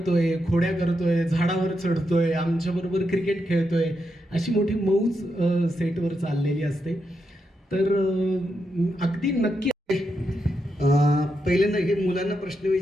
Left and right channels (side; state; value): both; normal; correlation 0.84